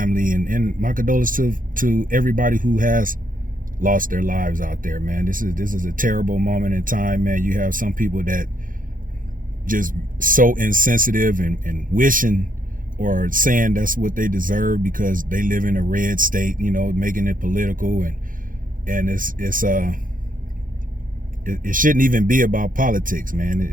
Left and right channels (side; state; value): left; late; 0.40 ms